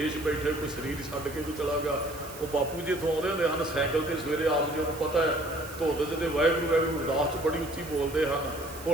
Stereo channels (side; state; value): right; noise; hiss, 16 dB below the sound